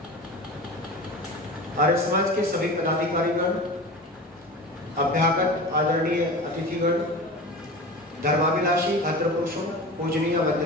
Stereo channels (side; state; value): both; normal; correlation 0.32